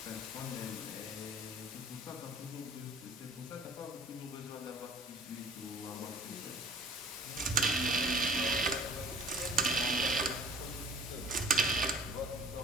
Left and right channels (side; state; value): both; normal; correlation 0.49